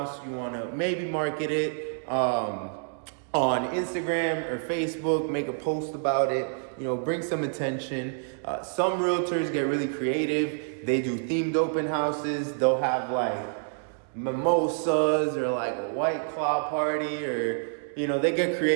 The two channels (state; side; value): silent; left; 59 dB below the other